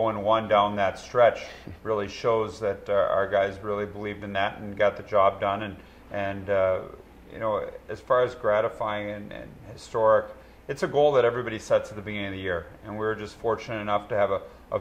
down that stretch really shows that our guys really believed in that and got the job done. And you know, as far as gratifying and historic, it's a goal that everybody sets at the beginning of the year, and we were just fortunate enough to have a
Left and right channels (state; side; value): identical; both; correlation 1.00